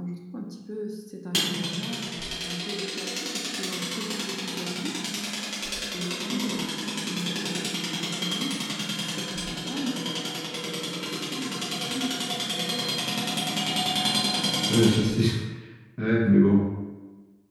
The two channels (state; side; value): identical; both; correlation 1.00